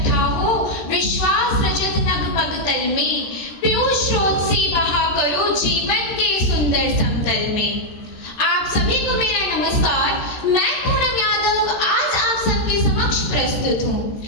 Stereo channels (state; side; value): late; right; 13 ms